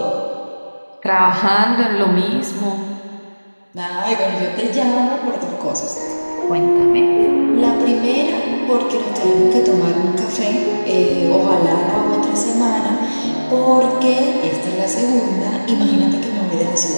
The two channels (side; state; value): both; inverted; correlation -1.00